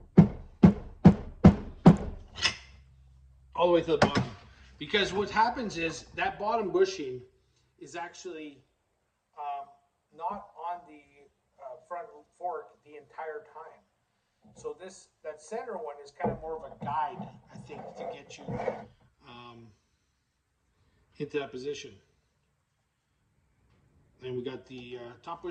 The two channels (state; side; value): identical; both; correlation 1.00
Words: all the way to the bottom. Because what happens is that bottom bushing is actually not on the front fork the entire time. So that center one is kind of more of a guide, I think, to get you into that position. Then we got the top